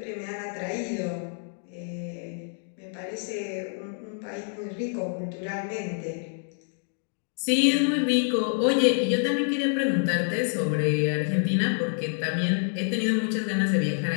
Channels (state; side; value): silent; right; 58 dB below the other